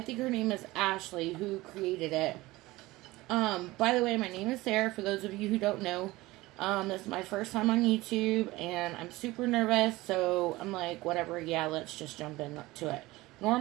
think her name is Ashley, who created it. By the way, my name is Sarah, for those of you who don't know. This is my first time on YouTube, and I'm super nervous, so I'm like, whatever, yeah, let's just jump into it.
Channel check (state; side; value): quieter; left; 19.5 dB